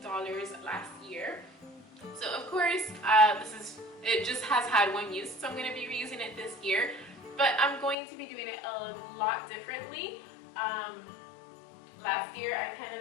last year. So of course, it just has had one use, so I'm going to be reusing it this year. But I'm going to be doing it a lot differently. Last year I kind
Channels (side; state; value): right; drops out; at 8.0 s